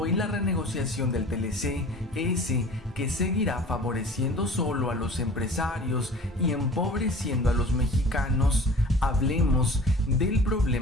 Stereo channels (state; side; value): normal; both; correlation 0.43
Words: la renegociación del TLC, ese que seguirá favoreciendo solo a los empresarios y empobreciendo a los mexicanos. Hablemos del